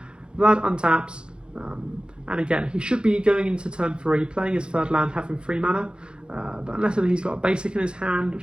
Vlad untaps, and again, he should be going into turn 3, playing his 3rd land, having 3 mana, but unless he's got a basic in his hand,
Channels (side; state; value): left; late; 0.052 ms